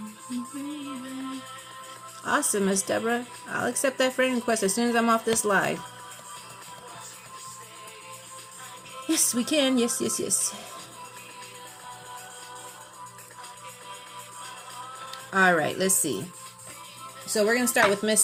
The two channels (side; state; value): both; identical; correlation 1.00